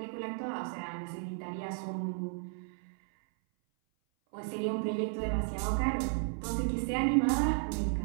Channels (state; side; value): silent; left; 55 dB below the other